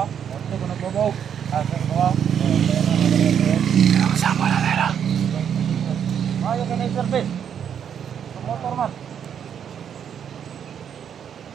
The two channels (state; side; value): quieter; left; 8.4 dB